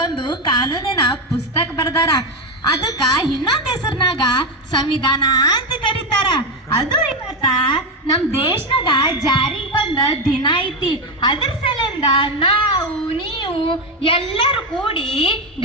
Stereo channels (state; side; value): normal; both; correlation 0.11